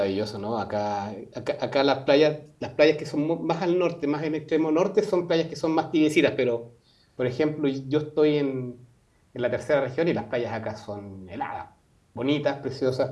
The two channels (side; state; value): both; identical; correlation 1.00